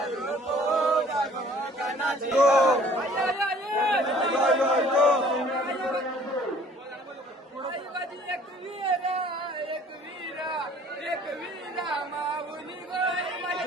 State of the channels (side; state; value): both; normal; correlation 0.54